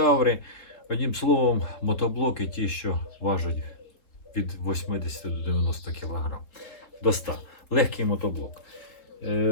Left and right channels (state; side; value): late; right; 3.4 ms